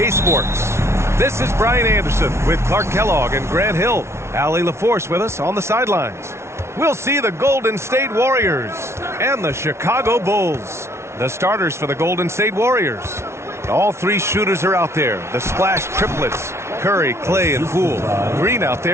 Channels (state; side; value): late; left; 0.13 ms